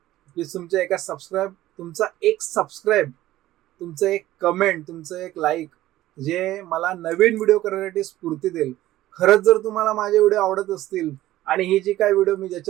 प्लीज तुमच्या तुमचा एक सबस्क्राईब, तुमचं एक कमेंट, तुमचं एक लाईक जे मला नवीन व्हिडिओ करण्यासाठी स्फूर्ती देईल. खरंच जर तुम्हाला माझे व्हिडिओ आवडत असतील आणि ही जी काय व्हिडिओ मी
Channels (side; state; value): left; quieter; 15.1 dB